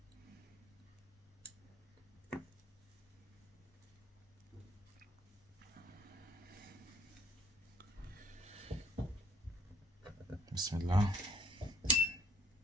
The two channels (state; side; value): normal; both; correlation 0.61